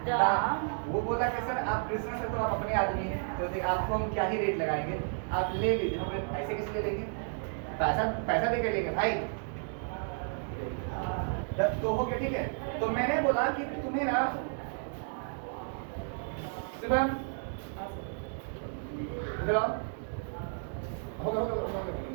दाम वो बोला कि सर आप कृष्णा सर तो आप अपने आदमी हैं तो आपको हम क्या ही रेट लगाएंगे आप ले लीजिए हम ऐसे कैसे ले लेंगे पैसा दे के लेंगे भाई तो हो गया ठीक है। तो मैंने बोला कि तुम्हें ना शुभम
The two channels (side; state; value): left; silent; 56 dB below the other